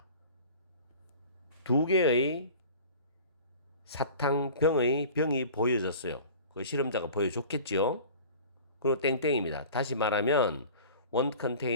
두 개의 사탕병의 병이 보여졌어요. 그 실험자가 보여줬겠죠. 그리고 땡땡입니다. 다시 말하면 one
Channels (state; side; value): inverted; both; correlation -0.42